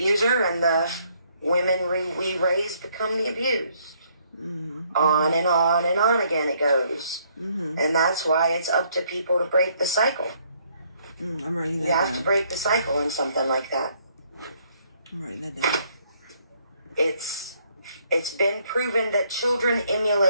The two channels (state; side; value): inverted; both; correlation -0.68